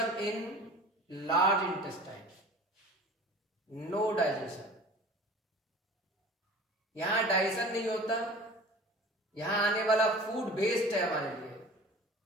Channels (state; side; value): normal; both; correlation 0.42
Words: in large intestine. No digestion. यहां डाइजेशन नहीं होता, यहां आने वाला फूड वेस्ट है, हमारे लिए